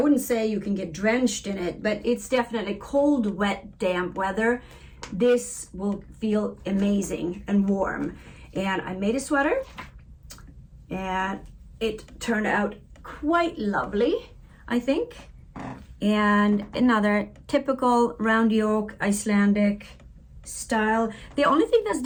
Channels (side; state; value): both; identical; correlation 1.00